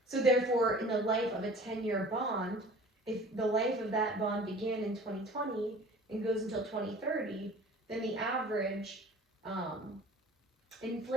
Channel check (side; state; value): both; normal; correlation 0.45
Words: So therefore, in the life of a 10-year bond, if the life of that bond began in 2020 and goes until 2030, then the average